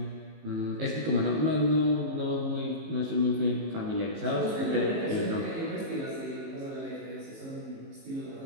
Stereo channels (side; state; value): left; late; 19 ms